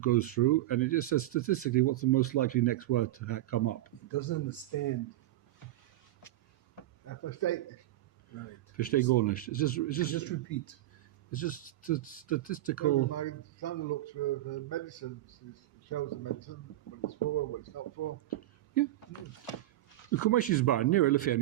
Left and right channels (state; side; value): quieter; left; 15.3 dB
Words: goes through, and it just says statistically what's the most likely next word to come up. It doesn't understand. That's a mistake. Right. Verstehe gar nicht. It's Just just repeat. it's just statistical. My son looks for the medicines. It shows the medicine, what it's for, what it's not for. Come is bar near Elephant